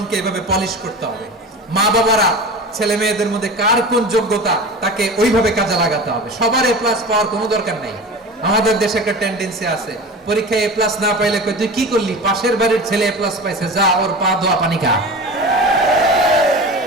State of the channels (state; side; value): normal; both; correlation 0.33